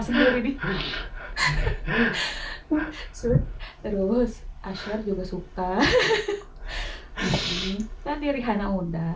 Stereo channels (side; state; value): both; identical; correlation 1.00